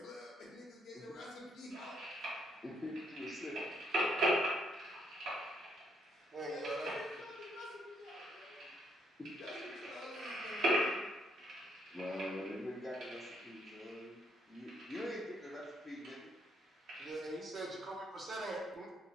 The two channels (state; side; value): normal; both; correlation 0.73